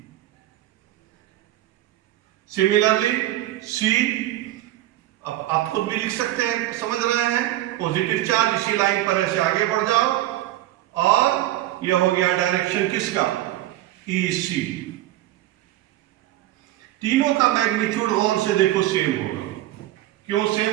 Similarly C, अब आप खुद भी लिख सकते हैं, समझ रहे हैं, पॉजिटिव चार्ज इसी लाइन पर ऐसे आगे बढ़ जाओ और यह हो गया डायरेक्शन किसका, EC। तीनों का मैग्नीट्यूड गौर से देखो सेम होगा। क्यों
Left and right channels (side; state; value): left; quieter; 14.9 dB